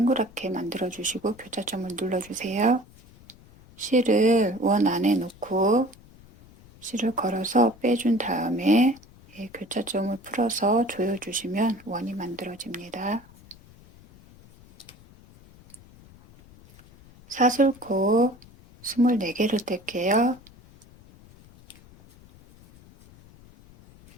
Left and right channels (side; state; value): left; noise; rumble, 24 dB below the sound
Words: 만들어 주시고 교차점을 눌러 주세요. 실을 원 안에 놓고 실을 걸어서 빼준 다음에 교차점을 풀어서 조여주시면 원이 만들어집니다. 사슬코 24개를 뗄게요.